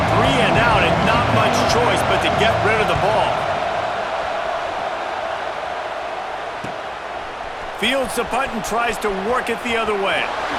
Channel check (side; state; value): both; identical; correlation 1.00